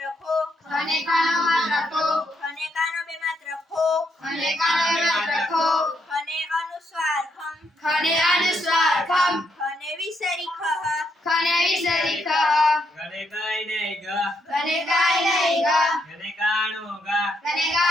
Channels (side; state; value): both; normal; correlation 0.77